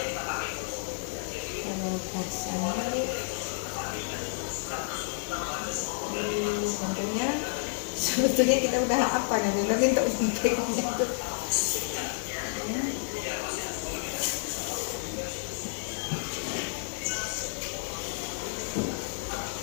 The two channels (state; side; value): silent; right; digital silence